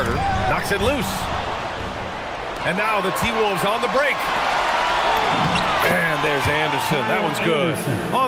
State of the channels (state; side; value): identical; both; correlation 1.00